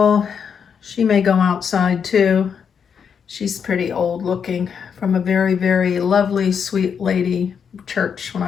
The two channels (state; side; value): quieter; right; 7.0 dB